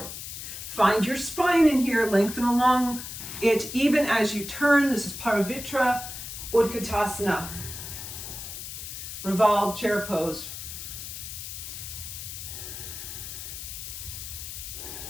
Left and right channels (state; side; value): noise; left; hiss, 9 dB below the sound